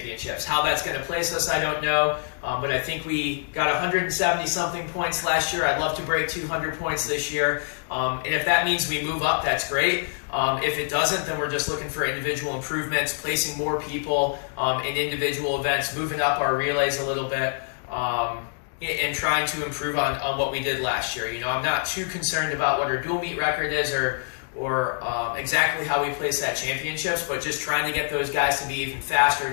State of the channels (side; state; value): right; silent; digital silence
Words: How that's going to place us, I don't know. But I think we got 170-something points last year. I'd love to break 200 points this year. And if that means we move up, that's great. If it doesn't, then we're just looking for individual improvements, placing more people in individual events, moving up our relays a little bit, and trying to improve on what we did last year. I'm not too concerned about what our dual meet record is or exactly how we place at championships, but just trying to get those guys to be even faster,